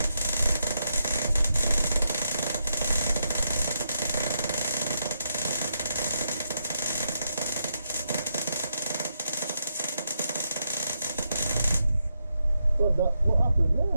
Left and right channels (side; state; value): both; inverted; correlation -0.82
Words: God, what happened